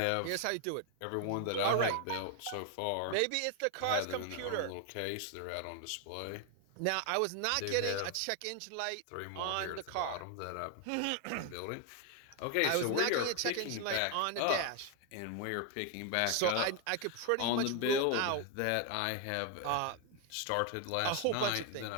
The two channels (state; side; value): different; both; correlation 0.01